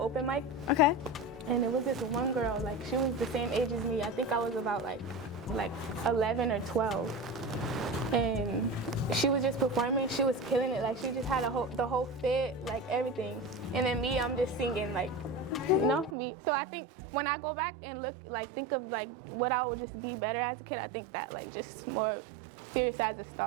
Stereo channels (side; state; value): left; drops out; at 16.2 s